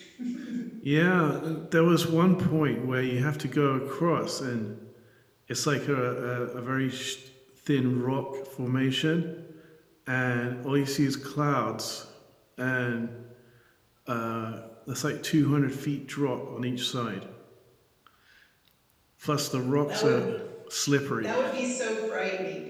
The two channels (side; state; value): both; identical; correlation 1.00